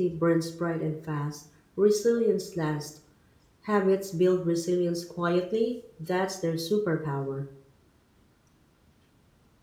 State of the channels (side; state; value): both; identical; correlation 1.00